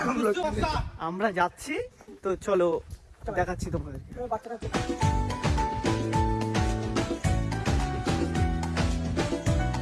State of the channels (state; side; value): identical; both; correlation 1.00